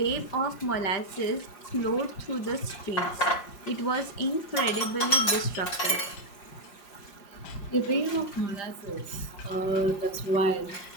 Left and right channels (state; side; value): late; right; 5.5 ms